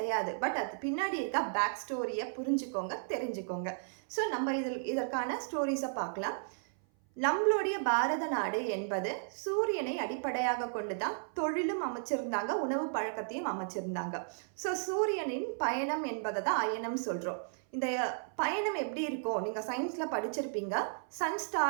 பட் அது பின்னாடி இருக்க பேக் ஸ்டோரியை புரிஞ்சுக்கோங்க, தெரிஞ்சுக்கோங்க. ஸோ நம்ம இதற்கான ஸ்டோரிஸை பார்க்கலாம். நம்மளுடைய பாரத நாடு என்பது சூரியனை அடிப்படையாக கொண்டு தான் தொழிலும் அமைச்சிருந்தாங்க, உணவு பழக்கத்தையும் அமைச்சிருந்தாங்க. ஸோ சூரியனின் பயணம் என்பதை தான் அயனம் சொல்கிறோம். இந்த பயணம் எப்படி இருக்கும், நீங்கள் சயின்ஸில் படிச்சிருப்பீங்க. சன்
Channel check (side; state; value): left; silent; 55 dB below the other